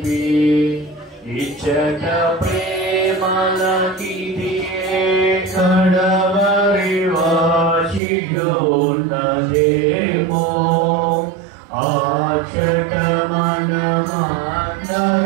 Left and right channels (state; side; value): drops out; left; at 8.0 s